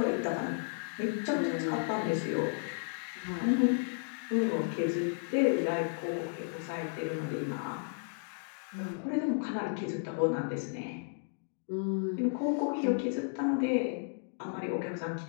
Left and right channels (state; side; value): silent; right; digital silence